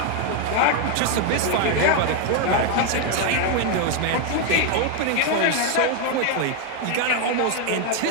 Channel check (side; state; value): both; different; correlation 0.01